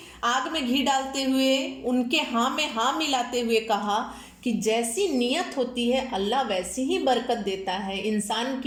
आग में घी डालते हुए उनके हाँ में हाँ मिलाते हुए कहा कि जैसी नीयत होती है अल्लाह वैसी ही बरकत देता है। इंसान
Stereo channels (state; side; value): identical; both; correlation 1.00